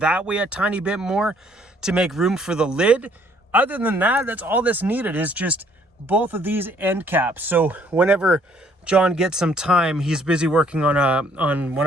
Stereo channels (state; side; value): normal; both; correlation 0.63